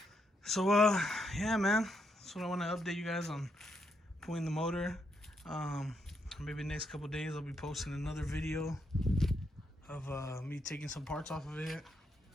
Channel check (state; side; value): normal; both; correlation 0.78